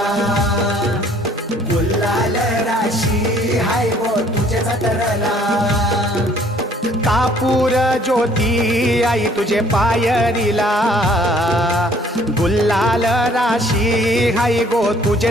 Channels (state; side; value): normal; both; correlation 0.59